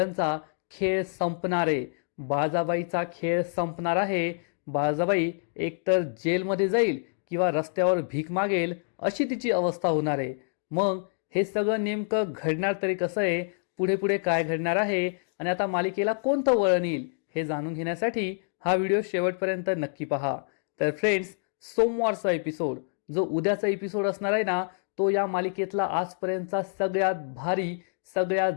खेळ संपणार आहे. बाळाबाईचा खेळ संपणार आहे. बाळाबाई एकतर जेलमध्ये जाईल किंवा रस्त्यावर भीक मागेल अशी तिची अवस्था होणार आहे. मग हे सगळं नेमकं घडणार तरी कसं आहे, पुढे पुढे काय घडणार आहे आणि आता मालिकेला कोणतं वळण येईल हे जाणून घेण्यासाठी हा व्हिडिओ शेवटपर्यंत नक्की पहा. तर फ्रेंड्स, सोमवारचा एपिसोड जो उद्याचा एपिसोड असणार आहे ना, तो या मालिकेतला आजपर्यंतचा सगळ्यात भारी, सगळ्यात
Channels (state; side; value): silent; right; digital silence